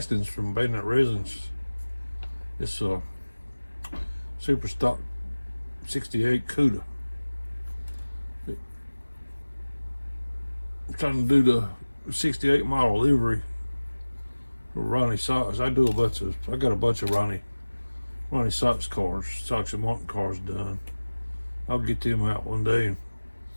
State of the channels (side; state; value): both; inverted; correlation -1.00